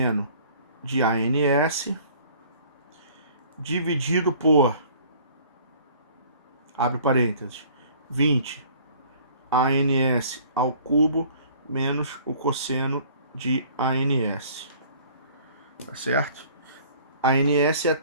de ANS dividido por, abre parênteses, 20 ANS ao cubo menos o cosseno de ANS. Tá certo? ANS é a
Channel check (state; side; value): inverted; both; correlation -0.52